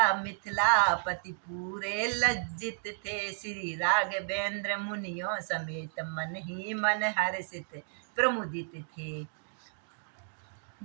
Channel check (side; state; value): left; silent; digital silence